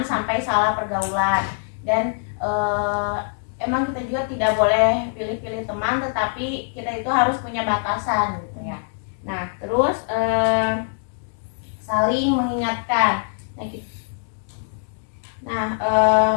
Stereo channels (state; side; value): silent; right; digital silence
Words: sampai salah pergaulan. Dan emang kita juga tidak boleh pilih-pilih teman, tetapi kita itu harus punya batasan gitu ya. Nah, terus saling mengingatkan.